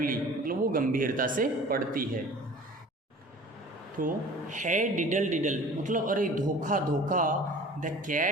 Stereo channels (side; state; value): both; normal; correlation 0.44